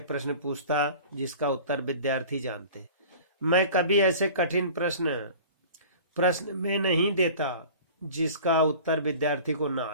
प्रश्न पूछता जिसका उत्तर विद्यार्थी जानते। मैं कभी ऐसे कठिन प्रश्न में नहीं देता जिसका उत्तर विद्यार्थी को ना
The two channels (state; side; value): inverted; both; correlation -0.42